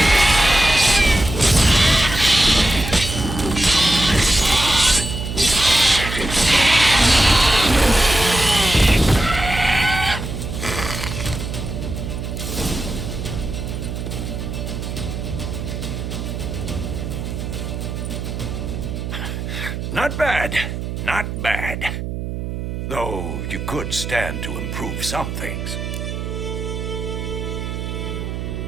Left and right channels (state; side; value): noise; right; hum, 5 dB below the sound